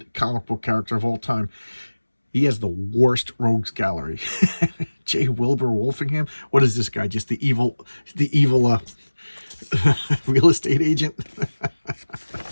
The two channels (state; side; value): inverted; both; correlation -1.00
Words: comic book character of all time. He has the worst rogues gallery. J. Wilbur Wolfingham. What is this guy? Just the evil real estate agent.